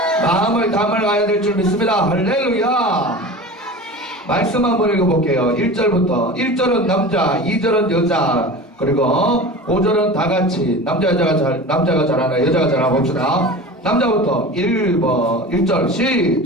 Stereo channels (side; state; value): both; normal; correlation 0.34